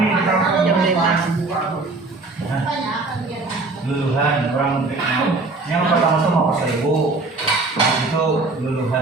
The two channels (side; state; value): left; quieter; 3.4 dB